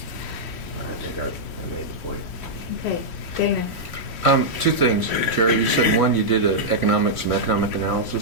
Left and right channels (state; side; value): late; right; 3.1 ms